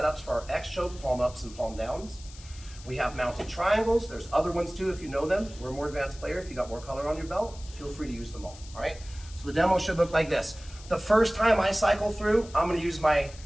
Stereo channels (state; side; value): noise; left; hiss, 19 dB below the sound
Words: for our X choke, palm ups and palm downs. We have mounted triangles. There's other ones too if you know them. We're a more advanced player. If you got more color on your belt, feel free to use them all right? So the demo should look like this. The first time I cycle through, I'm gonna use my